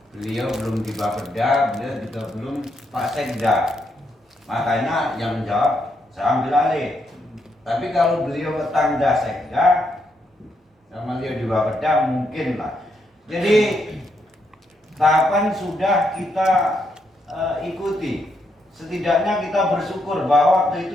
beliau belum di Bapeda, beliau juga belum Pak Sekda. Makanya yang menjawab saya ambil alih. Tapi kalau beliau tanda Sekda sama beliau di Bapeda mungkin lah. Jadi tahapan sudah kita ikuti. Setidaknya kita bersyukur bahwa waktu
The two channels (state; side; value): normal; both; correlation 0.78